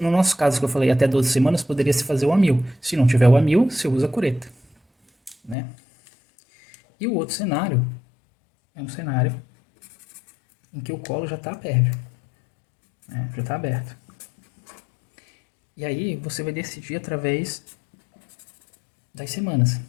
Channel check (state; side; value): drops out; right; at 5.6 s